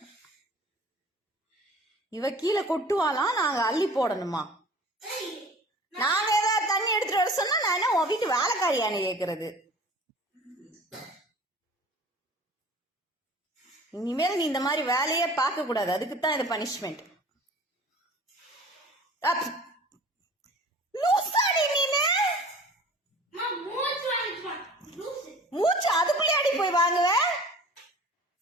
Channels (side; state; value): both; normal; correlation 0.44